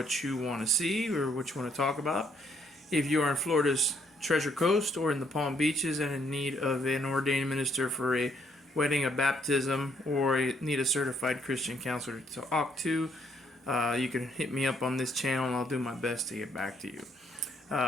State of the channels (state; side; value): normal; both; correlation 0.69